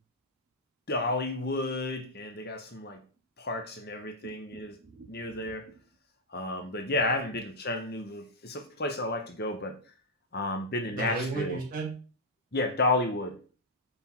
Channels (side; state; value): both; normal; correlation -0.07